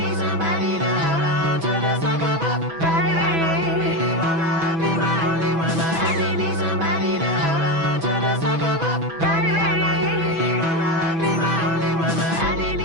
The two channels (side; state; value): left; late; 6.1 ms